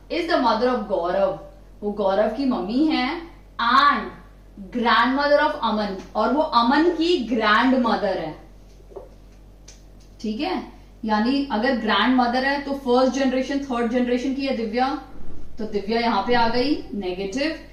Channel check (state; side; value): identical; both; correlation 1.00